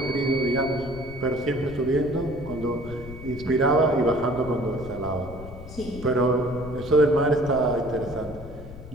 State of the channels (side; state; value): left; noise; rumble, 14 dB below the sound